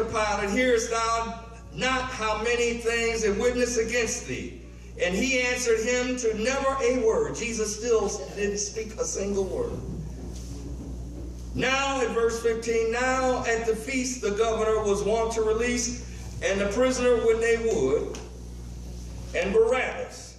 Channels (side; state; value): both; identical; correlation 1.00